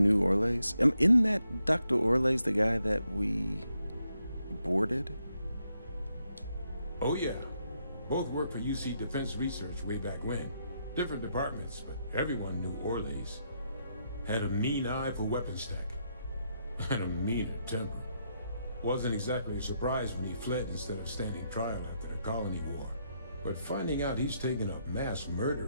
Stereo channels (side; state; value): both; inverted; correlation -0.79